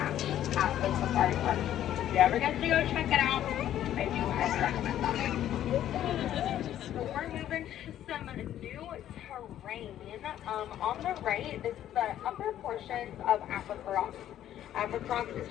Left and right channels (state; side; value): quieter; right; 11.6 dB